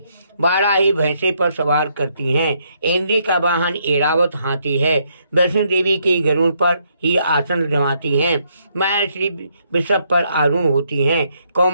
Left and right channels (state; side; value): inverted; both; correlation -0.73